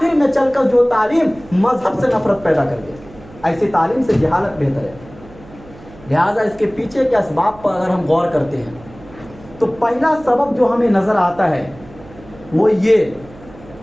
میں چل کر جو تعلیم مذہب سے نفرت پیدا کر دے، ایسی تعلیم سے جہالت بہتر ہے۔ لہٰذا اس کے پیچھے کے اسباب پر اگر ہم غور کرتے ہیں تو پہلا سبب جو ہمیں نظر آتا ہے وہ یہ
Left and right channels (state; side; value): noise; right; hum, 21 dB below the sound